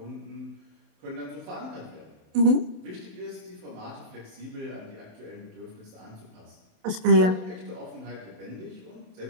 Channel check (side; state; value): left; late; 27 ms